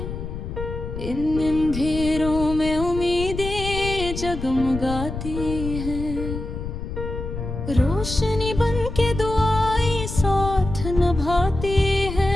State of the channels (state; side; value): noise; left; rumble, 6 dB below the sound